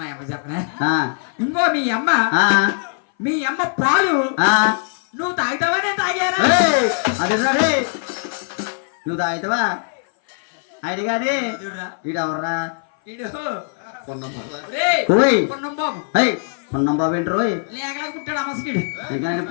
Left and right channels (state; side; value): silent; right; 58 dB below the other